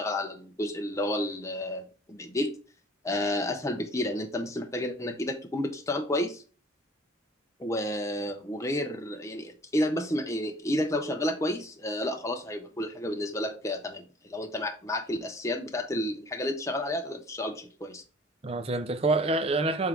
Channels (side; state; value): both; normal; correlation 0.51